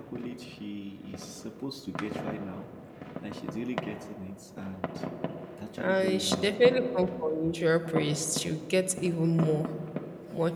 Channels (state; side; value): identical; both; correlation 1.00